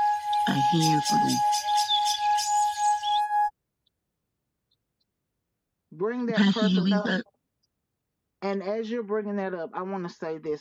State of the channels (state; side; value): identical; both; correlation 1.00